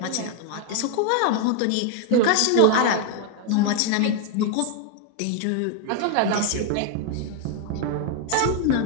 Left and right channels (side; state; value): both; different; correlation 0.01